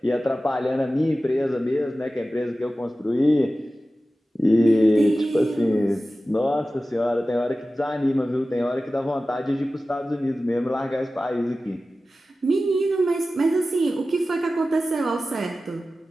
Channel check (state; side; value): normal; both; correlation 0.95